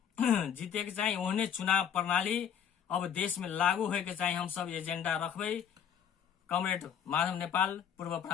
जीते के चाहिए, ओहने चुनाव प्रणाली अब देश में लागू होए के चाहिए। हम सब एजेंडा रखबे कमरेड माधव नेपाल पूर्व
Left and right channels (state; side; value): quieter; right; 8.3 dB